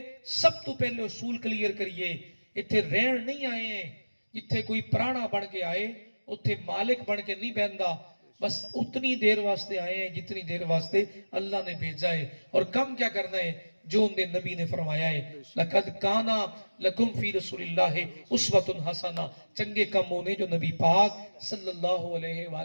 سب تو پہلے اصول کلیئر کریے اتھے رہن نہیں آئے ہیں جتھے کوئی پرانا بن کے آئے اتھے مالک بن کے نہیں بہندا بس اتنی دیر واسطے آئے ہیں جتنی دیر واسطے اللہ نے بھیجا ہے اور کم کیا کرنا ہے جو ان دے نبی نے فرمایا ہے لقد کانا لکم فی رسول اللہ اسوۃ حسنہ چنگے کم ہونے جو نبی پاک صلی اللہ علیہ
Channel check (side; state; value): both; inverted; correlation -1.00